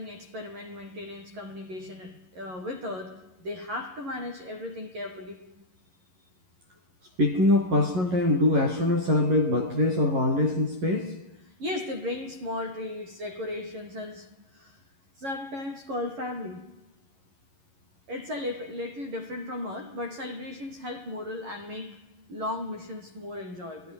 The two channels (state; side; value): late; left; 11 ms